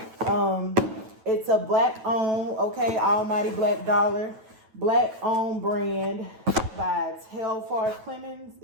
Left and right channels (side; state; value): left; late; 9.2 ms